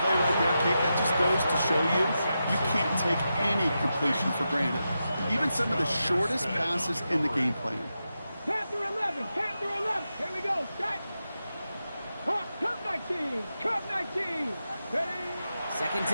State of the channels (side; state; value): both; inverted; correlation -0.89